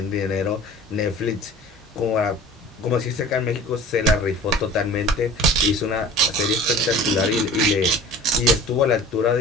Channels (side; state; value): both; normal; correlation 0.42